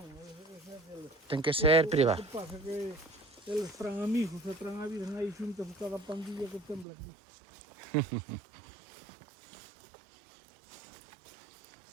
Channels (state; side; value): drops out; left; at 6.9 s